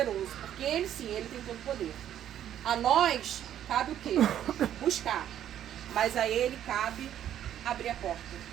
porque Ele sim, Ele tem todo o poder. A nós cabe o quê? Buscar. Mas a Ele cabe abrir a porta,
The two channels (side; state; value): left; quieter; 10.8 dB